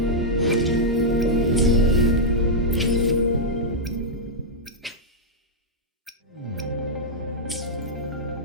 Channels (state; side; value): normal; both; correlation -0.07